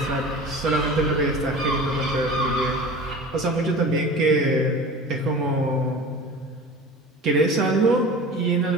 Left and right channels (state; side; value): normal; both; correlation 0.37